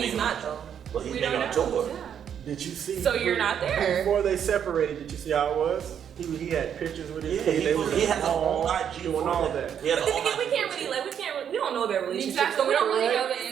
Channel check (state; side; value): quieter; left; 8.6 dB